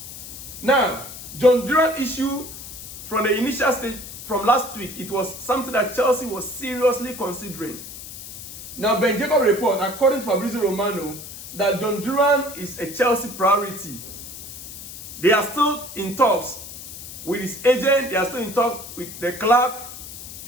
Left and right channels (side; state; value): left; noise; hiss, 12 dB below the sound